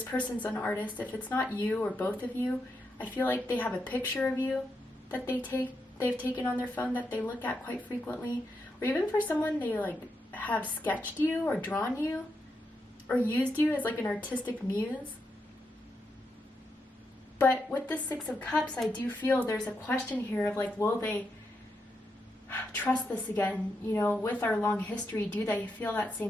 person's an artist. If it's not you or both of you, I feel like they have a picture of you that they've taken on their phone that they look at quite frequently. Or even for someone, they have sketched you or drawn you or used you as an artistic muse. But with the Six of Cups, I do feel there's a question here of will they trust this again? With our long history, do they feel that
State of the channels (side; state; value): both; normal; correlation 0.83